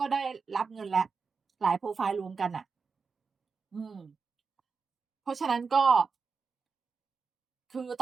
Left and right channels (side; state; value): left; quieter; 5.1 dB